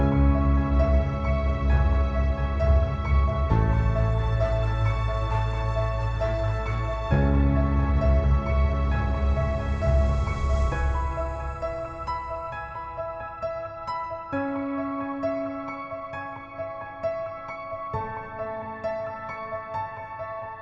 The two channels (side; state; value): both; identical; correlation 1.00